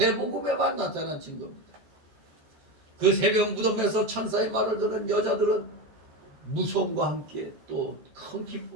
나타난 증거입니다. 그 새벽 무덤에서 천사의 말을 들은 여자들은 무서움과 함께 또 큰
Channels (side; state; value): left; late; 13 ms